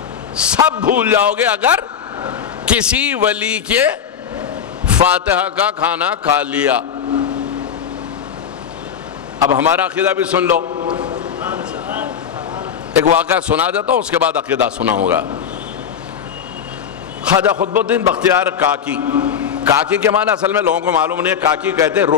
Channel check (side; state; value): right; quieter; 8.0 dB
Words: سب بھول جاؤ گے اگر کسی ولی کے فاتحہ کا کھانا کھا لیا۔ اب ہمارا عقیدہ بھی سن لو، ایک واقعہ سنا دیتا ہوں، اس کے بعد عقیدہ سناؤں گا۔ خواجہ قطب الدین بختیار کاکی، کاکی کے معنی اصل میں لوگوں کو معلوم نہیں ہے، کاکی کہتے ہیں